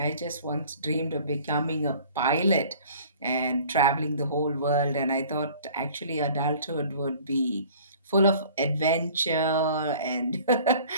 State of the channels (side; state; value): both; inverted; correlation -0.49